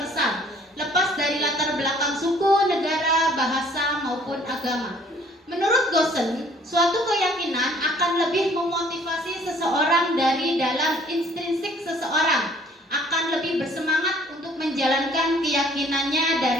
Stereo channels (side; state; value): both; normal; correlation 0.58